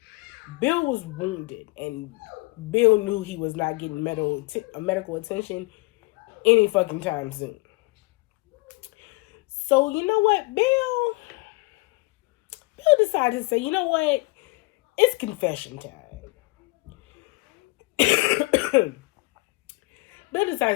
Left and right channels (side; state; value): right; quieter; 24.9 dB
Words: Bill was wounded, and Bill knew he was not getting medical attention any fucking time soon. So, you know what? Bill decided to say, you know what? It's confession time. Bill